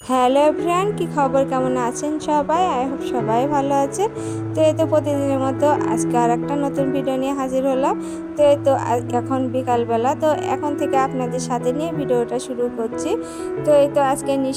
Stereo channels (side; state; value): both; identical; correlation 1.00